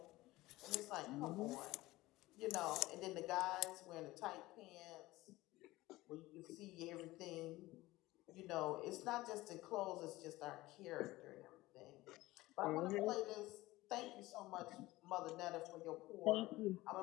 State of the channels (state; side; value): quieter; right; 18.6 dB